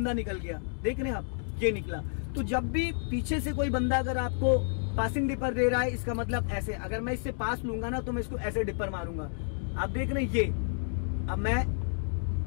निकल गया, देख रहे हैं आप, ये निकला। तो जब भी पीछे से कोई बंदा अगर आपको पासिंग डिपर दे रहा है, इसका मतलब ऐसे, अगर मैं इससे पास लूंगा ना तो मैं इसको ऐसे डिपर मारूंगा। आप देख रहे हैं ये, अब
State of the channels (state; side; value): silent; right; digital silence